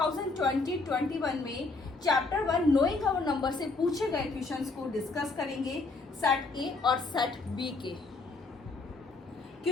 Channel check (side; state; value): right; quieter; 3.7 dB